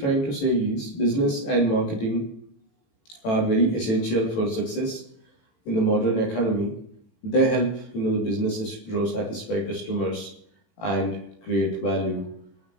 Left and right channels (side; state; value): right; late; 18 ms